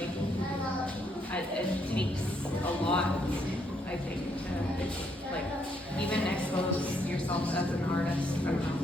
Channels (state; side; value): normal; both; correlation 0.73